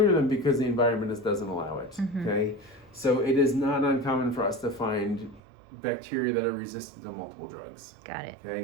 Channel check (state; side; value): drops out; left; at 5.4 s